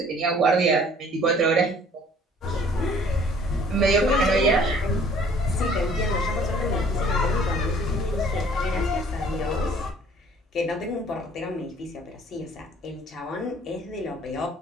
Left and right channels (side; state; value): both; normal; correlation 0.55